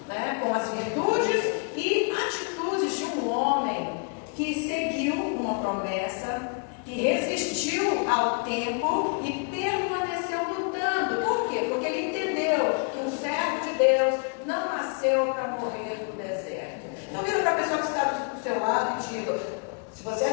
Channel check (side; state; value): right; quieter; 38.3 dB